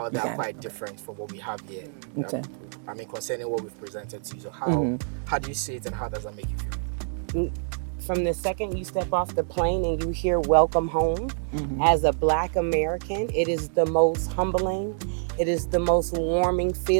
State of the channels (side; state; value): left; silent; digital silence